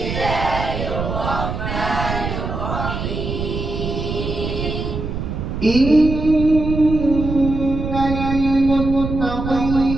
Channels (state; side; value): noise; right; rumble, 4 dB below the sound